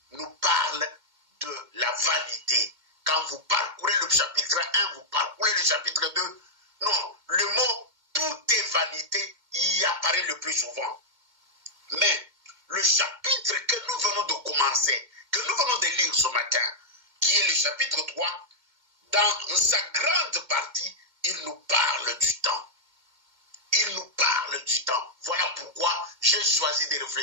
nous parlent de la vanité. Quand vous parcourez le chapitre 1, vous parcourez le chapitre 2, non, le mot « tout est vanité » y apparaît le plus souvent. Mais le chapitre que nous venons de commencer, que nous venons de lire ce matin, qui est le chapitre 3, dans sa grande partie, il nous parle du temps. Il nous parle du temps. Voilà pourquoi j'ai choisi de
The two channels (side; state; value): left; late; 2.1 ms